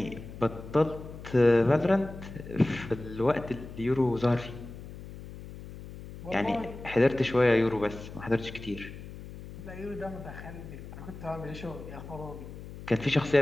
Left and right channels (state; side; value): noise; left; hum, 13 dB below the sound